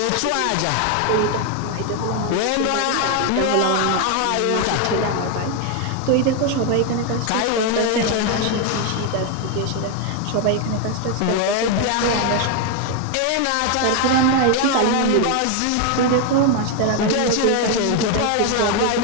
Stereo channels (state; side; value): different; both; correlation 0.01